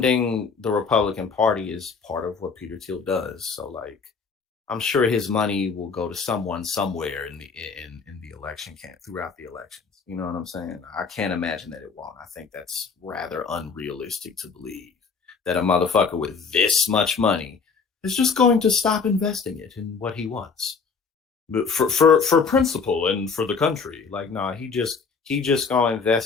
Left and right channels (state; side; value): quieter; right; 5.2 dB